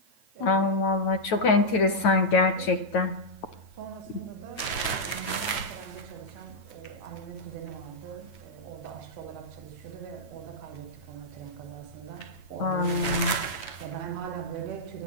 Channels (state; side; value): late; right; 9.2 ms